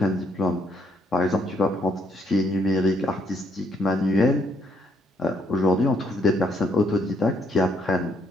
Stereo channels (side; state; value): both; normal; correlation 0.72